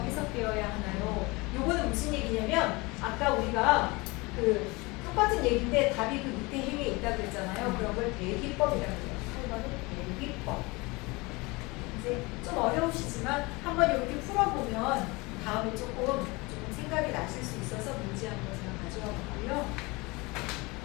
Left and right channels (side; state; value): right; quieter; 24.7 dB